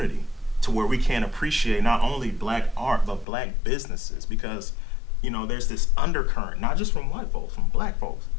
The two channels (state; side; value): drops out; right; at 3.2 s